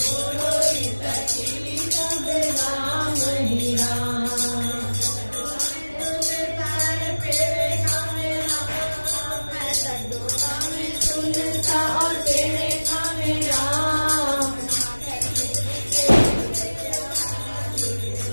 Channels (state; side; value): inverted; both; correlation -1.00